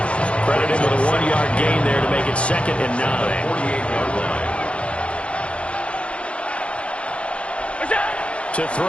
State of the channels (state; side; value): late; right; 0.060 ms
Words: Credit him with a 1-yard gain there to make it 2nd and 9. 48-yard line. To